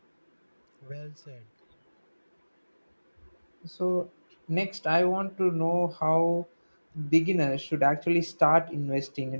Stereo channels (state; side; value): inverted; both; correlation -1.00